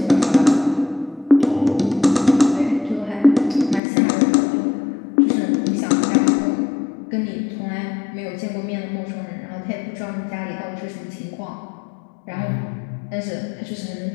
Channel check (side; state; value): right; drops out; at 3.8 s